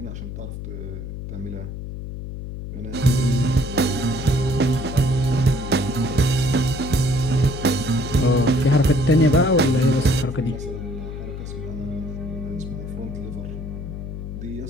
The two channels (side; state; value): left; noise; hum, 8 dB below the sound